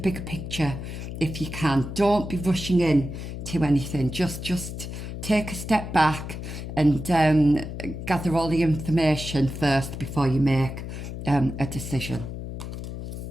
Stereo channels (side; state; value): left; noise; hum, 8 dB below the sound